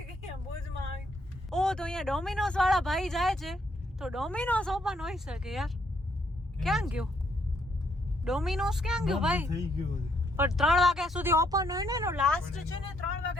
કર્યા ભુજમાં આવી. ઓ તો અહીંયા ડોમિનોઝ વાળા ભાઈ જાય છે તો ડોમિનોઝ ઓપન હોઈ શકે યાર. ક્યાં ગયો ડોમિનોઝ? ક્યાં ગયો ભાઈ? થઈ ગયો છે. પણ 3 વાગ્યા સુધી ઓપન હોય ને, એનો લાસ્ટ છે ને 3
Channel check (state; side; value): normal; both; correlation 0.72